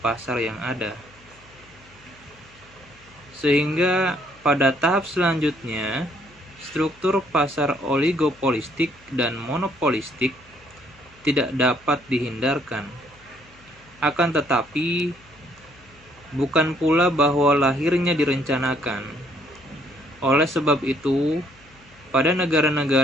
yang ada. Sehingga pada tahap selanjutnya, struktur pasar oligopolistik dan monopolistik tidak dapat dihindarkan. Akan tetapi, bukan pula bahwa lahirnya direncanakan. Oleh sebab itu, pada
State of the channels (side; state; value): left; noise; hum, 27 dB below the sound